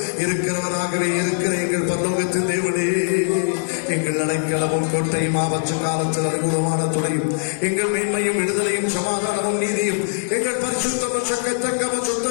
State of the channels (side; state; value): right; silent; digital silence